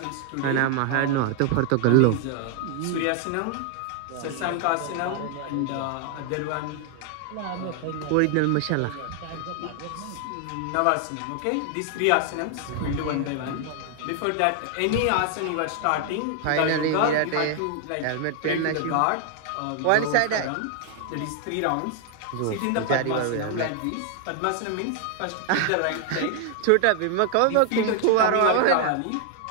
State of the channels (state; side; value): different; both; correlation 0.00